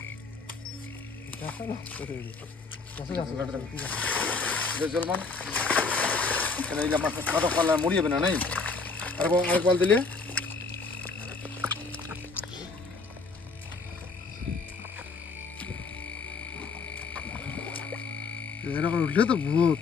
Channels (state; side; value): quieter; right; 4.3 dB